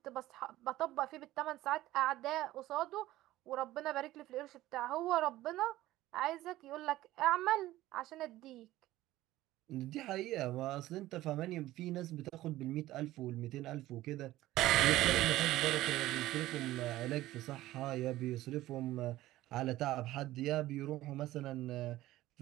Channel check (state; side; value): quieter; left; 16.0 dB